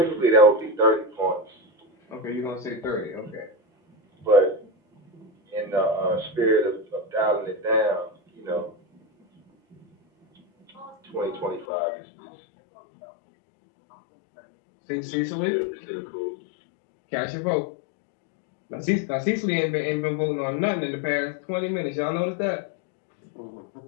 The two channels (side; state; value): right; drops out; at 11.7 s